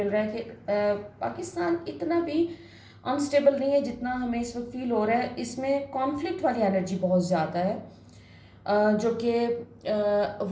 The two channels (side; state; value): both; identical; correlation 1.00